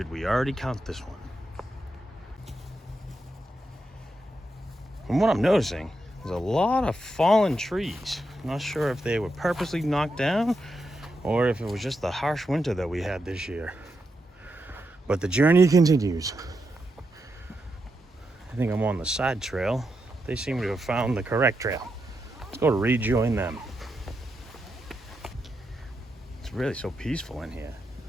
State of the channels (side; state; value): both; normal; correlation 0.85